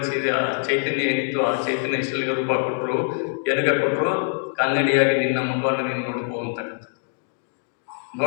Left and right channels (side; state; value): right; silent; digital silence